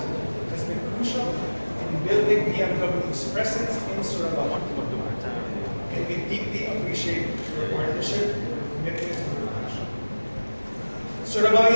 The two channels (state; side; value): inverted; both; correlation -1.00